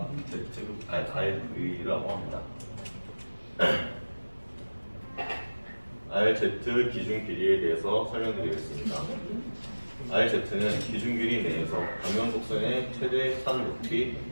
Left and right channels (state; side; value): inverted; both; correlation -1.00